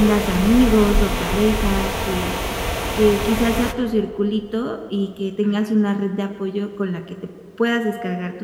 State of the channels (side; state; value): both; identical; correlation 1.00